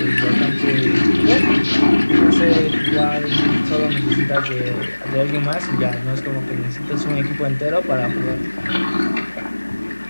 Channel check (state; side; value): inverted; both; correlation -1.00